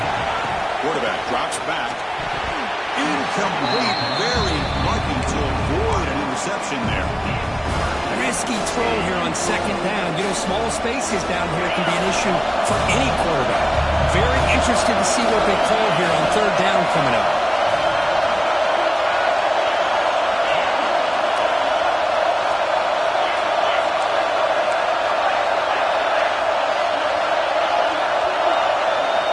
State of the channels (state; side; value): identical; both; correlation 1.00